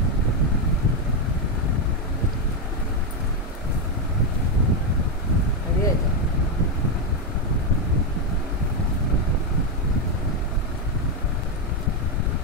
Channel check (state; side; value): normal; both; correlation 0.05